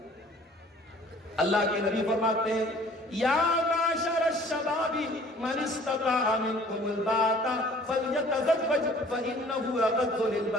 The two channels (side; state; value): both; normal; correlation 0.53